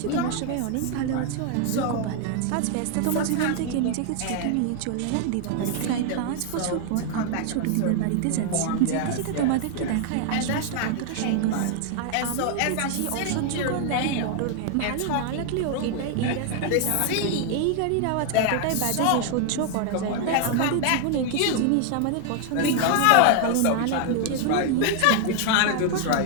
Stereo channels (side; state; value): both; different; correlation 0.00